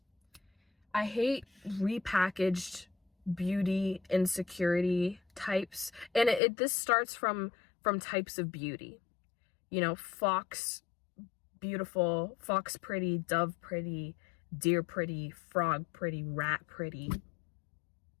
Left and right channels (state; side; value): drops out; right; at 6.4 s